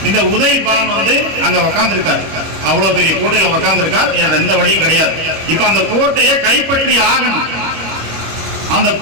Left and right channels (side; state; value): left; late; 25 ms